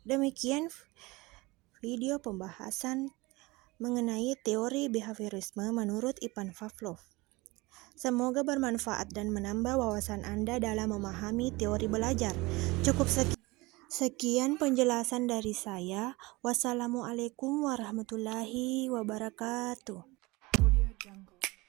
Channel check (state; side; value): quieter; left; 22.9 dB